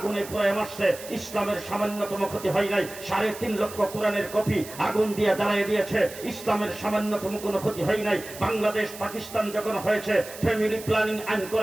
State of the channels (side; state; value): right; noise; hiss, 14 dB below the sound